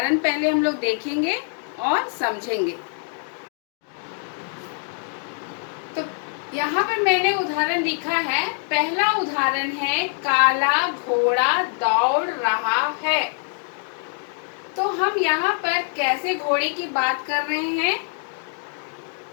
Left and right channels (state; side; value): silent; right; 57 dB below the other